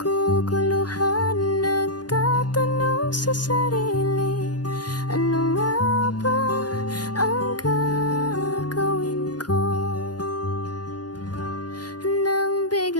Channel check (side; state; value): right; late; 0.69 ms